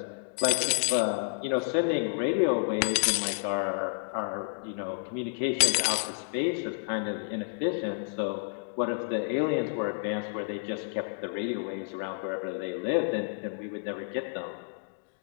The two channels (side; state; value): right; silent; digital silence